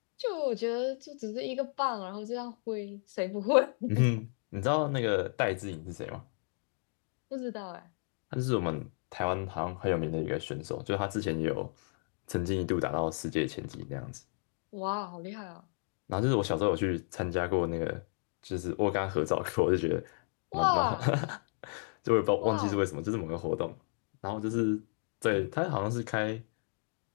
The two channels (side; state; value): right; silent; 56 dB below the other